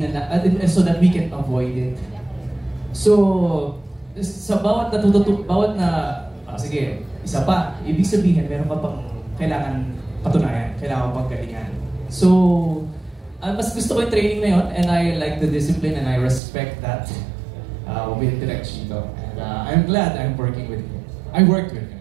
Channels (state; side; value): drops out; left; at 16.4 s